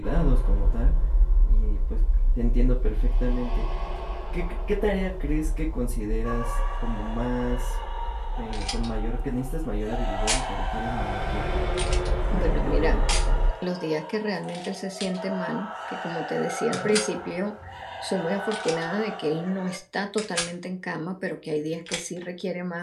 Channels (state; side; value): identical; both; correlation 1.00